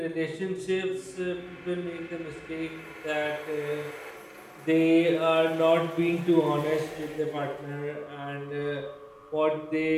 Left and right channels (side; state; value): both; identical; correlation 1.00